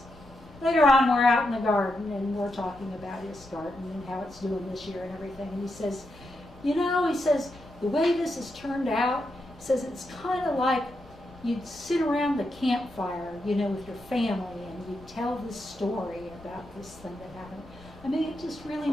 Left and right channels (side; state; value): left; noise; rumble, 22 dB below the sound